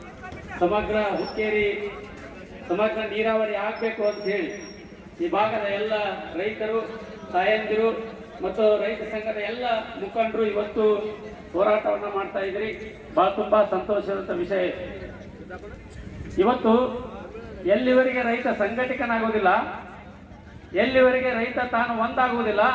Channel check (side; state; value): both; identical; correlation 1.00